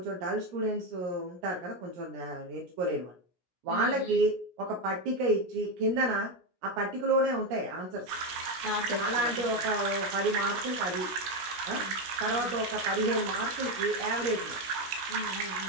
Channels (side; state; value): left; late; 17 ms